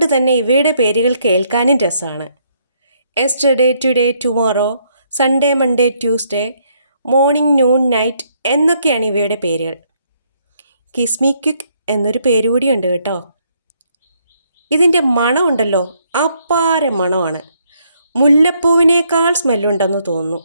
തന്നെ ഇവയുടെ പേരുകൾ കേൾക്കാനും രസമാണ്. Yesterday today tomorrow, Sunday Monday Tuesday, morning noon night എന്നൊക്കെയാണ് ഇവയുടെ പേരുകൾ. കിസ്മി ക്വിക്ക് എന്നൊരു പേരുകൂടിയുണ്ട് കേട്ടോ. ഇതിൻ്റെ മണമുണ്ടല്ലോ, അപ്പാര മണമാണ്. മുല്ലപ്പൂവിനേക്കാൾ സ്മെല്ലുണ്ടെന്ന് തോന്നുന്നു.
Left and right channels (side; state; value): both; inverted; correlation -0.72